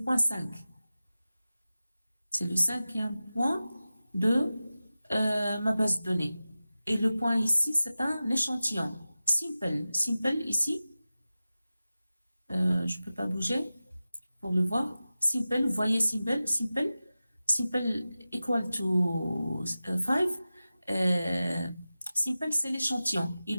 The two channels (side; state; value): both; inverted; correlation -0.95